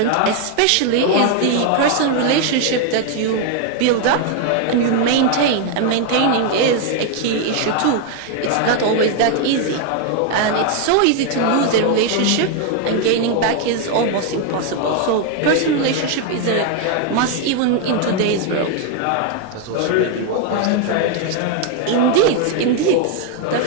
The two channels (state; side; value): different; both; correlation 0.01